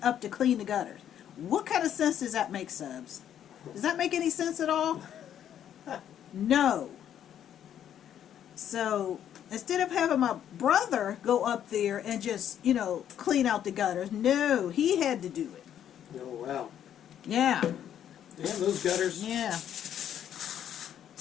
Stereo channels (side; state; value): right; quieter; 10.0 dB